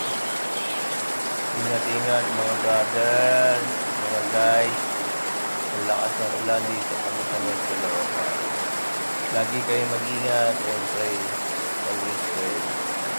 Ingat, ingat mga brother. Mga guys. Ang lakas ng ulan dito kami sa North Caloocan. Lagi kayo mag-ingat and pray. Always pray.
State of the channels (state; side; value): inverted; both; correlation -1.00